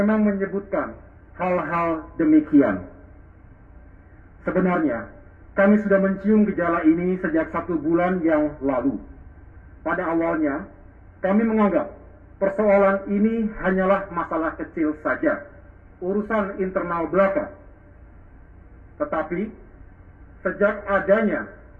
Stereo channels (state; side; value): identical; both; correlation 1.00